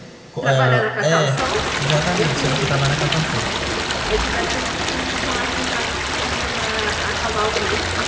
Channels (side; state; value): both; identical; correlation 1.00